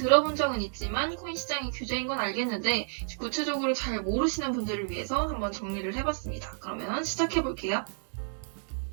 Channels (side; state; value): left; silent; 58 dB below the other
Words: 적은 있지만 코인 시장이 규제인 건 알겠는데 구체적으로 잘 모르시는 분들을 위해서 한번 정리를 해봤습니다. 그러면 시작해볼게요.